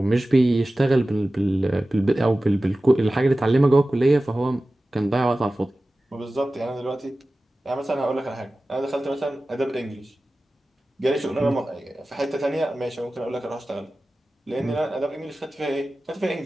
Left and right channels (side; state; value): both; normal; correlation 0.96